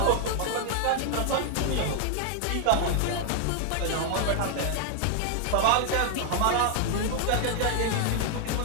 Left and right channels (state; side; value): different; both; correlation 0.00